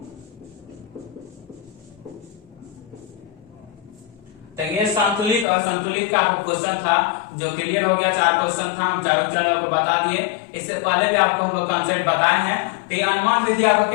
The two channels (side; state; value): right; drops out; at 5.5 s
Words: तो ये संतुलित और संतुलित का आपको क्वेश्चन था जो क्लियर हो गया। 4 क्वेश्चन था, हम चारों चैनल आपको बता दिए। इससे पहले भी आपको हम लोग कॉन्सेप्ट बताए हैं। तो ये अनुमान विधि आपको